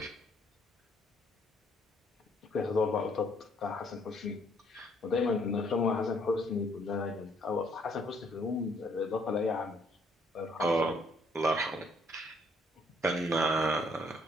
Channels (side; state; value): both; normal; correlation 0.66